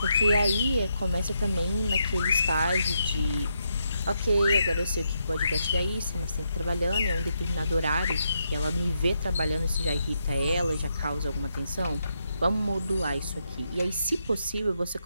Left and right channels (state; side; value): inverted; both; correlation -0.81